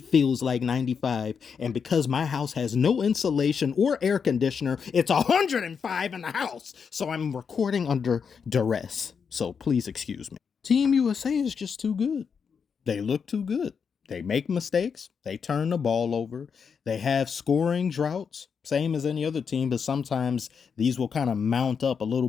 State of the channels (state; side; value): quieter; right; 6.3 dB